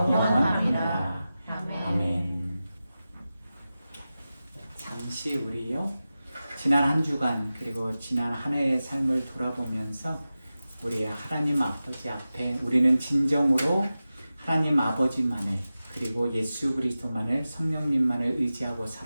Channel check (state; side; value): inverted; both; correlation -0.94